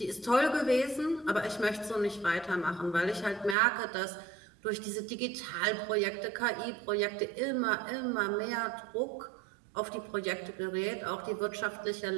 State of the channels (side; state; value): left; drops out; at 3.6 s